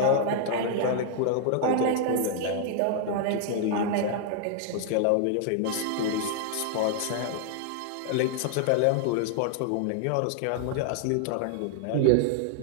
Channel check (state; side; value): different; both; correlation 0.00